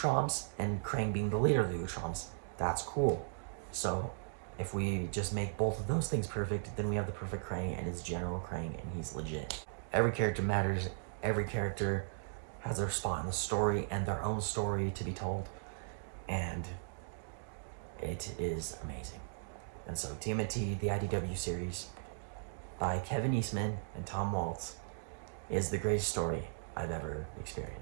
and Krang being the leader of the Utroms, that's cool. So if we just make both of those things perfect, then we have the perfect Krang, and it's General Krang, and he's legit. Every character matters. Every character has their spot in the story and their own story to be told, and it is amazing. And so TMNT, the IDW series by Kevin Eastman and Tom Waltz, is the greatest story I've ever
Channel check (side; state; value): left; silent; digital silence